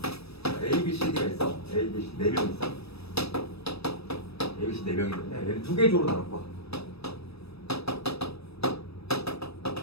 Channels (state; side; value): late; right; 0.78 ms